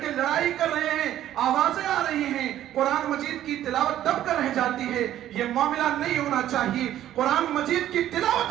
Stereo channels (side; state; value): left; quieter; 12.3 dB